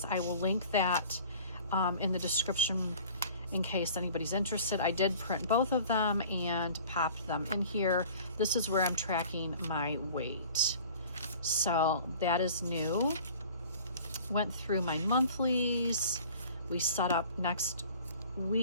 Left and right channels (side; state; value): both; inverted; correlation -0.46